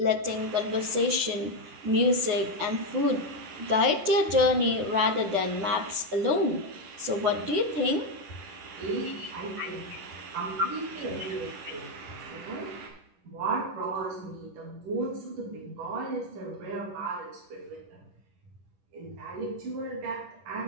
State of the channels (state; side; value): late; left; 10 ms